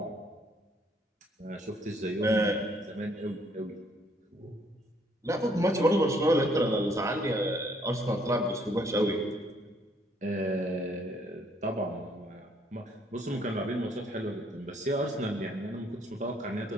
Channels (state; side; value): normal; both; correlation 0.66